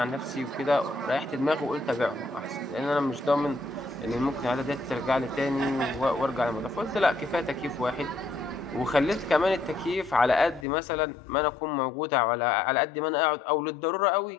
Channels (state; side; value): drops out; right; at 10.7 s